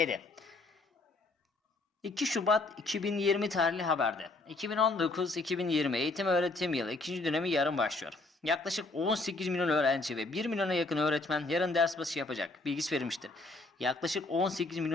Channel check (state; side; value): quieter; right; 3.1 dB